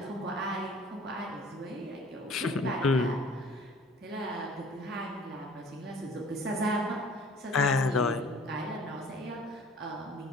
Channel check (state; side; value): normal; both; correlation 0.49